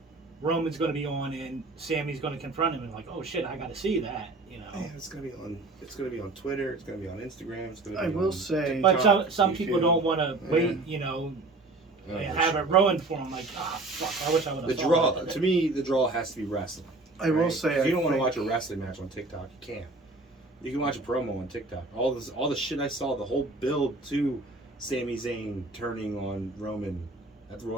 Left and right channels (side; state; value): left; quieter; 3.2 dB